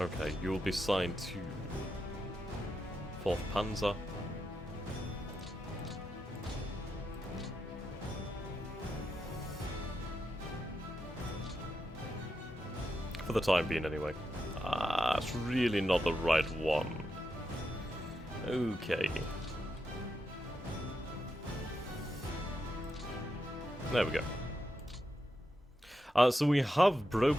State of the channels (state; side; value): normal; both; correlation 0.86